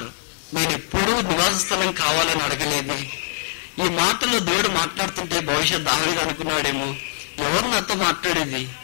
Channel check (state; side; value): silent; right; 59 dB below the other